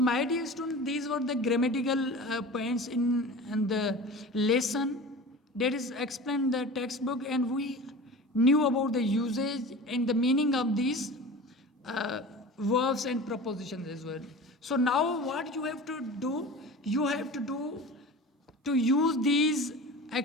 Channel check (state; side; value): normal; both; correlation 0.35